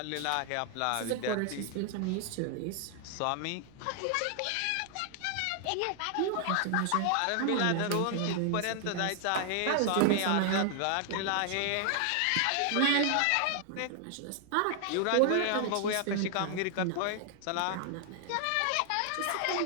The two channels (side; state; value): both; different; correlation 0.00